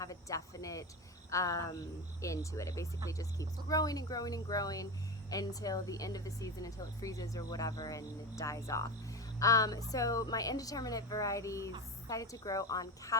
a definite end to it. It basically just keeps growing and growing and growing until the end of the season, until it freezes or whatever and it dies off. So my indeterminate varieties decided to grow on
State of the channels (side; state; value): both; normal; correlation 0.21